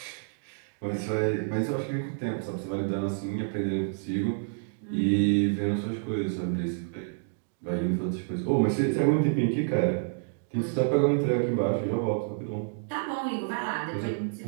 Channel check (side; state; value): left; silent; digital silence